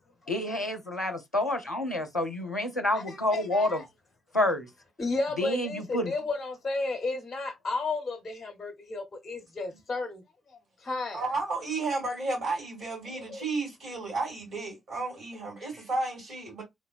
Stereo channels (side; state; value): both; normal; correlation 0.64